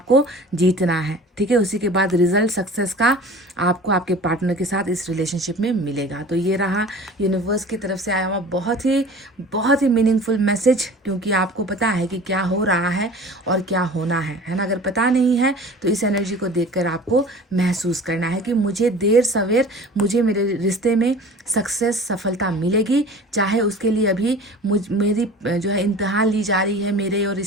जीतना है, ठीक है। उसी के बाद रिजल्ट सक्सेस का आपको आपके पार्टनर के साथ इस रिलेशनशिप में मिलेगा। तो ये रहा यूनिवर्स की तरफ से आया हुआ बहुत ही मीनिंगफुल मैसेज, क्योंकि आपको पता है कि क्या हो रहा है और क्या होना है ना। अगर पता नहीं है तो इस एनर्जी को देखकर आपको महसूस करना है कि मुझे देर सवेर मुझे मेरे रिश्ते में सक्सेस, सफलता मिलेगी, चाहे उसके लिए अभी मेरी जो है इम्तिहान ली जा रही है, मेरे और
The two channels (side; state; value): both; normal; correlation 0.41